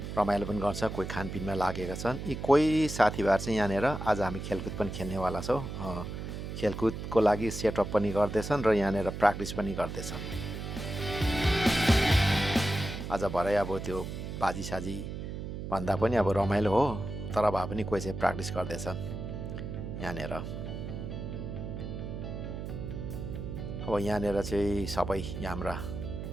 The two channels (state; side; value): noise; right; hum, 7 dB below the sound